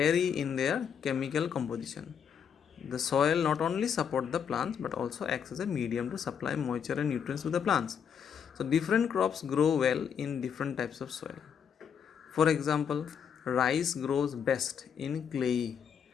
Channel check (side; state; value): right; quieter; 7.6 dB